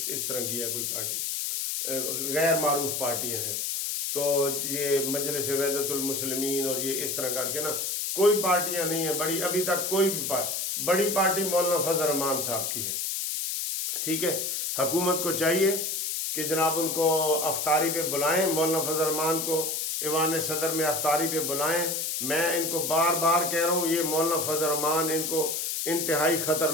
اس طرح کی ہے کوئی پارٹی، غیر معروف پارٹیاں ہیں. تو یہ مجلس وحدت المسلمین اور یہ اس طرح کر کے نا کوئی پارٹیاں نہیں ہیں بڑی. ابھی تک کوئی بھی بڑی پارٹی مولانا فضل الرحمان صاحب کی ہے. ٹھیک ہے. حکومت کو چاہیے کہ جناب ان کو افطاری پہ بلائیں، مولانا فضل الرحمان کو ایوان صدر میں افطاری پہ بلائیں. میں ان کو بار بار کہہ رہا ہوں، یہ مولانا فضل الرحمان ان کو انتہائی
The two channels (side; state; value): left; noise; hiss, 1 dB below the sound